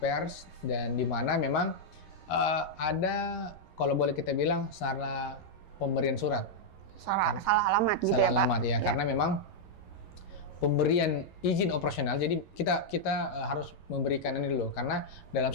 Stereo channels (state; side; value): late; right; 11 ms